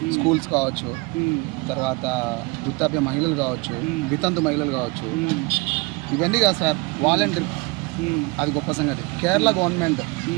స్కూల్స్ కావచ్చు, తర్వాత వృద్ధాప్య మహిళలు కావచ్చు, వితంతు మహిళలు కావచ్చు, ఇవన్నీ కాదు సార్, వాలంటీర్, అది గొప్ప సంగతి. Kerala government.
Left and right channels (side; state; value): left; quieter; 27.2 dB